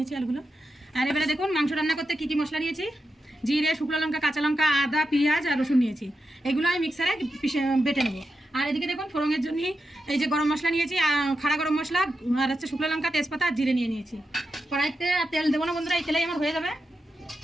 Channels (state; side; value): normal; both; correlation 0.88